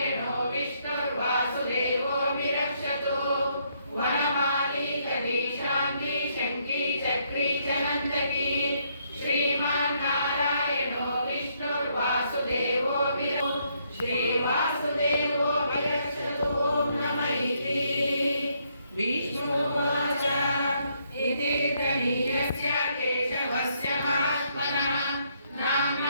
विष्णुर्वासुदेवो विरक्षतु वनमाली कवी शांति शक्ति चक्री च नंदकी श्रीमन्नारायणो विष्णुर्वासुदेवो श्रीवासुदेवो विरक्षतु ओम नमः इति विष्णुवाच इति तनीयस्य केशवस्य महात्मनः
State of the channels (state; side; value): inverted; both; correlation -0.72